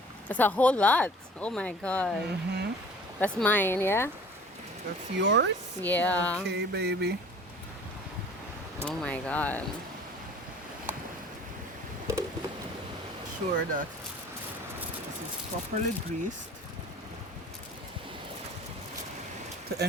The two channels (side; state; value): both; normal; correlation 0.47